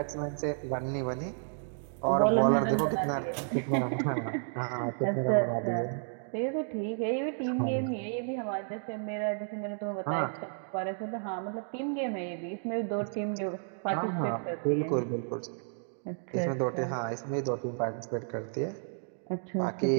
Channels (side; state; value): left; silent; digital silence